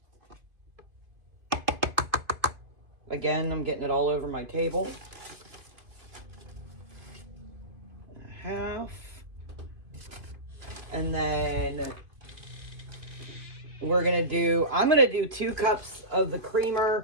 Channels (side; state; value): left; late; 2.5 ms